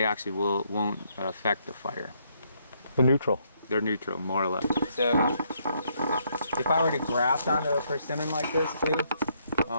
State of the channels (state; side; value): inverted; both; correlation -0.72